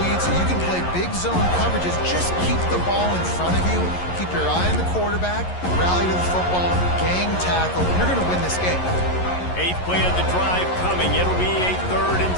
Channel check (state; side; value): late; right; 11 ms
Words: so you can play big zone coverages. Just keep the ball in front of you. Keep your eye on the quarterback. Rally to the football. Gang tackle. You're going to win this game. 8th play of the drive coming. It'll be a 3rd and